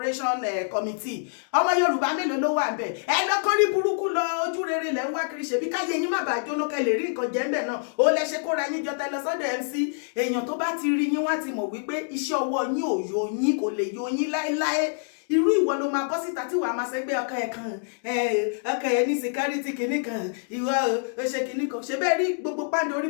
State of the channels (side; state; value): right; silent; digital silence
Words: committee ọmọ Yorùbá mélòó ló wà ńbẹ̀ ẹ lọ́kàn rí burúkú lọ ojú rere lẹ́ ń wá kiri ṣebí káyé yín má bàa jóná kẹ́ lè rí nǹkan jẹ ńbẹ̀ náà ó lẹ ṣe kóra yín jọ tẹ lọ sọ́dọ̀ MC èèyàn tó bá ti rí yín wá ti mọ̀ wípé iṣẹ́ ọwọ́ yín ò yọ yín kò lè yọ yín láéláé irú ìwọ ló máa bọ́ síta tí wàá máa ṣẹgbẹ́ ọkọ ẹ̀ kan ọkọ ẹ̀ ní security kìíní kan ìwọ ó ṣe kìíní kan ṣe bẹ́ẹ̀ rí gbogbo pàǹdé orí